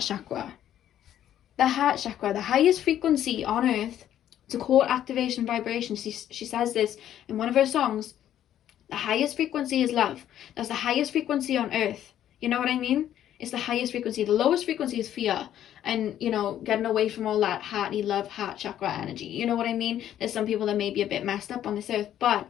chakra. The heart chakra, the highest frequency on Earth. It's a core activation vibration. She says this in one of her songs. The highest frequency is love. That's the highest frequency on Earth. You know what I mean? It's the highest frequency. The lowest frequency is fear. And, you know, getting away from all that hearty love, heart chakra energy. You know what I mean? There's some people that may be a bit messed up on this Earth, but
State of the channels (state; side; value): quieter; right; 11.2 dB